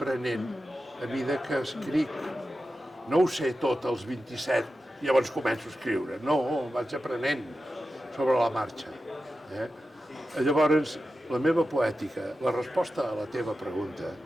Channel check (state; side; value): normal; both; correlation 0.92